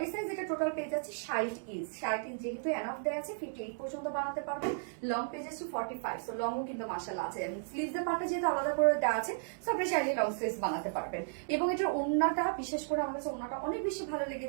সাইজ এটা টোটাল পেয়ে যাচ্ছি 60 ইঞ্চ। 60 ইঞ্চ যেহেতু এনাফ দেওয়া আছে, 58 পর্যন্ত বানাতে পারবেন। লং পেয়ে যাচ্ছি 45। সো লংও কিন্তু মাশাআল্লাহ আছে। স্লিভস এর পার্টটা যেহেতু আলাদা করে দেওয়া আছে, সো আপনি চাইলে লং স্লিভস বানাতে পারবেন। এবং এটার ওড়নাটা, বিশেষ করে আমার কাছে ওড়নাটা অনেক বেশি ভালো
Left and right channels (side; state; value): left; silent; digital silence